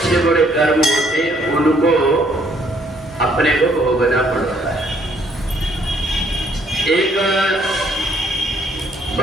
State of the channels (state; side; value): normal; both; correlation 0.66